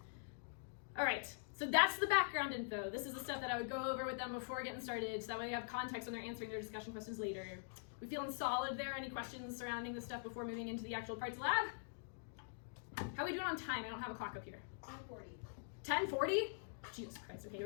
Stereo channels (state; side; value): silent; right; digital silence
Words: All right, so that's the background info. This is the stuff that I would go over with them before getting started, so that way they have context when they're answering their discussion questions later. We feeling solid there? Any questions surrounding this stuff before moving into the actual parts lab? How are we doing on time? I don't have a clock up here. 10:40. 10:40? Jesus Christ, okay,